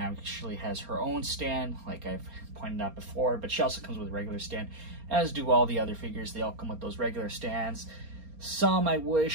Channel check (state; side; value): late; left; 4.3 ms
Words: has her own stand, like I've pointed out before, but she also comes with a regular stand, as do all the other figures. They all come with those regular stands. Some, I